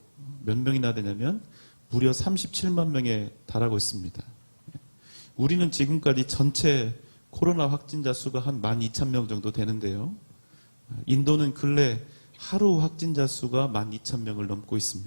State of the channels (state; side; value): inverted; both; correlation -1.00